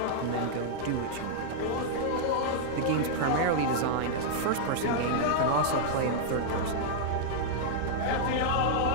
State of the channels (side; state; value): both; different; correlation -0.02